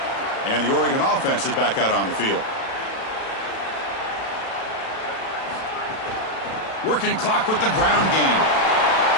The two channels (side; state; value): right; late; 37 ms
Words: And the Oregon offense is back out on the field. Working clock with the ground game.